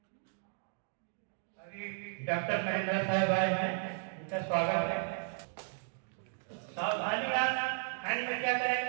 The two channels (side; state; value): left; silent; 55 dB below the other